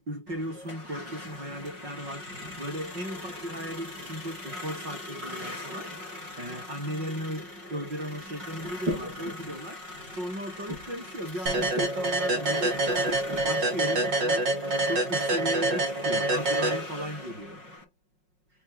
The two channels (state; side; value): late; left; 5.5 ms